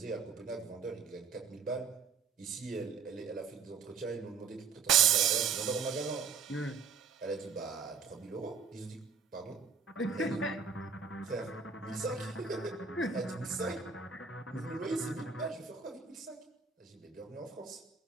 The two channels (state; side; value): quieter; left; 5.8 dB